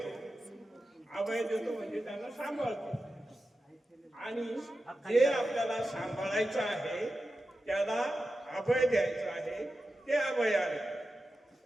अभय देतो म्हणजे त्यांना सांभाळतो. आणि जे आपल्याला सांभाळायचं आहे त्याला अभय द्यायचं आहे ते अभयारण्य.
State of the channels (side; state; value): both; normal; correlation 0.92